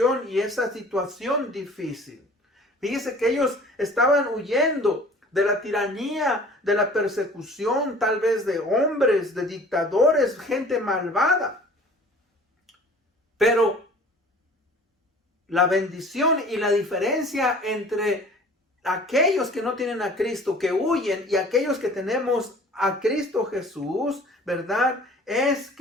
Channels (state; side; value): normal; both; correlation 0.48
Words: y esa situación difícil. Fíjese que ellos estaban huyendo de la tiranía, de la persecución, tal vez de hombres, de dictadores, gente malvada. Pero la bendición y la diferencia entre aquellos que no tienen a Cristo, que huyen, y aquellos que tenemos a Cristo Jesús, ¿verdad? Es